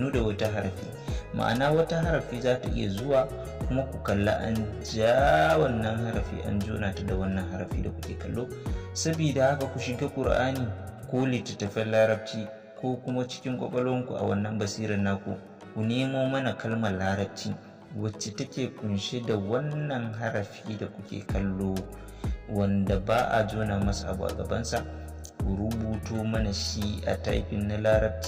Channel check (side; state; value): both; identical; correlation 1.00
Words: da wata harafi. Ma'ana wata harafi za ta iya zuwa kuma ku kalla an ja wannan harafi an jona ta da wannan harafi da kuke kallo. Sabida haka ku shiga Qur'ani ko littattafan larabci ko kuma cikin kwakwalwanku a wannan basirar naku, ku nemo mana kalmar larabci wacce take kunshe da wannan harafi da kuke kallo wanda ba a jona masa abu a gabansa. Ku rubuto mana shi a typing na